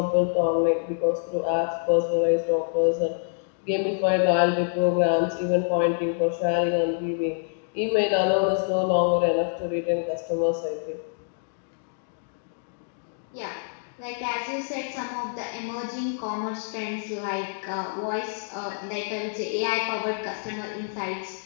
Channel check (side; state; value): right; silent; digital silence